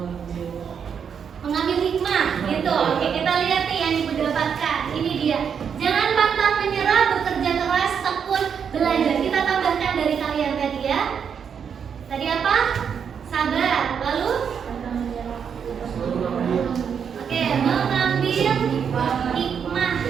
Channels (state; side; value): quieter; left; 7.2 dB